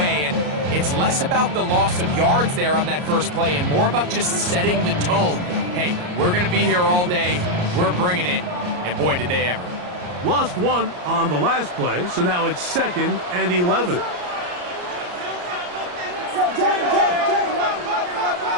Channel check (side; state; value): left; late; 34 ms